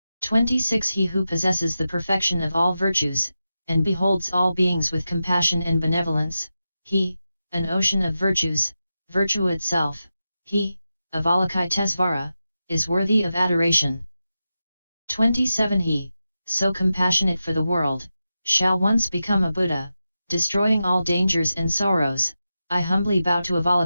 26 He who possesses the perfection of all virtues, and beholds all beings with compassion and benevolence, he, an ocean of virtues, virtue itself, he, Avalokitesvara, is worthy of adoration. 27 He, so compassionate for the world, shall once become a Buddha, destroying all dangers and sorrows. I humbly bow to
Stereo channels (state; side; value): inverted; both; correlation -0.91